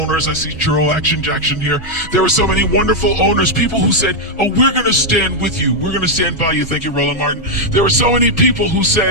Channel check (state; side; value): normal; both; correlation 0.00